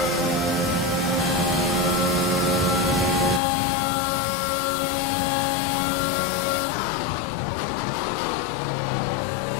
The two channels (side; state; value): right; drops out; at 3.4 s